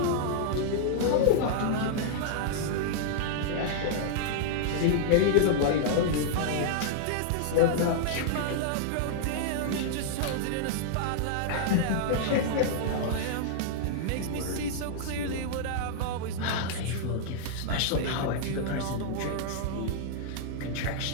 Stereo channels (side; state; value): both; different; correlation -0.01